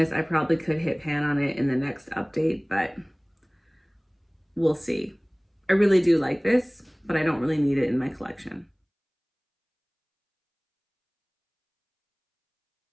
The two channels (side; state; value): both; identical; correlation 1.00